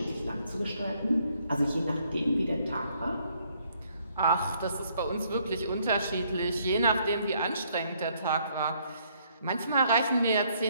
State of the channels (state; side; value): inverted; both; correlation -0.68